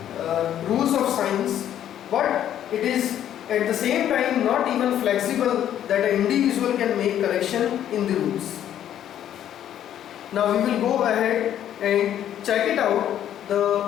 rules of science, but it is at the same time not even flexible that an individual can make correction in the rules. Now we will go ahead and check it out,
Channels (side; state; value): right; quieter; 10.8 dB